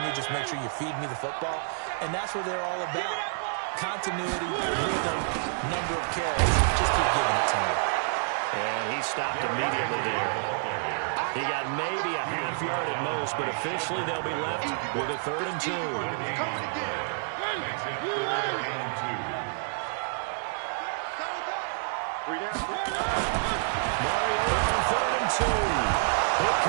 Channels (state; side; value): silent; left; 59 dB below the other